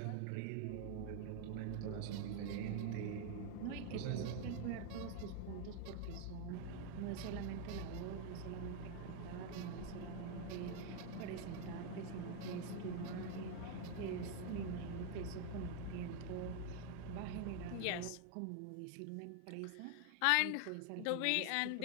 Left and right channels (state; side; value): different; both; correlation 0.01